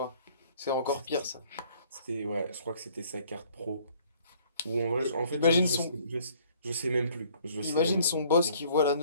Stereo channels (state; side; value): inverted; both; correlation -0.59